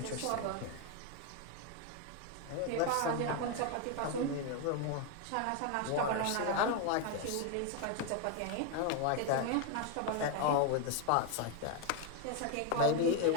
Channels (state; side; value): different; both; correlation 0.01